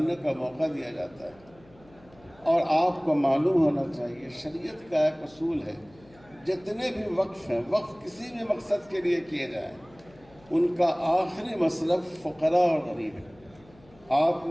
کا موقع دیا جاتا ہے. اور آپ کو معلوم ہونا چاہیے، شریعت کا ایک اصول ہے، جتنے بھی وقف ہیں، وقف کسی بھی مقصد کے لیے کیے جائیں، ان کا آخری مصرف فقراء اور غریب ہے. آپ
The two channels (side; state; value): left; noise; hum, 27 dB below the sound